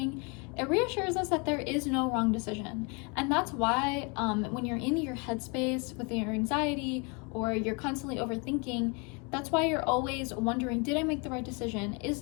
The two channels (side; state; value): right; quieter; 32.4 dB